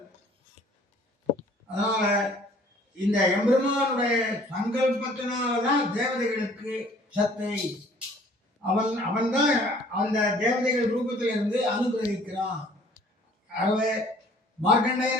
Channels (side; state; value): both; normal; correlation 0.55